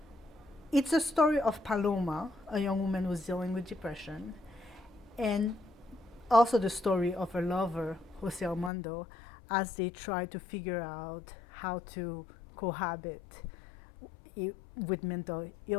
it's a story of Paloma, a young woman who's dealing with depression, and also the story of her lover, Jose Armando, as they try to figure out how to cohabit with mental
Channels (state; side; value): drops out; right; at 8.7 s